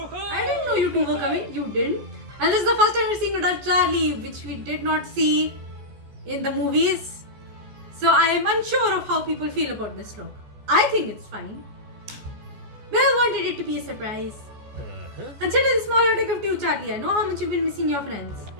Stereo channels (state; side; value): late; left; 14 ms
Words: I didn't know you two were coming. You didn't. And this is the first time we're seeing adult Charlie, which we did not see in the movies. So I am unsure of how people feel about this look. I think it's fine. Well, wanted it to be a surprise. Consider the smaller take of two, Charlie. I know how much you've been missing your friends.